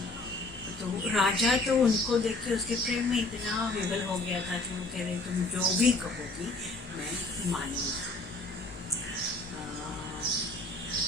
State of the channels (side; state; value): right; quieter; 3.1 dB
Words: तो राजा तो उनको देख के उसके प्रेम में इतना विवल हो गया था कि वो कह रहे तुम जो भी कहोगी मैं मानूंगा,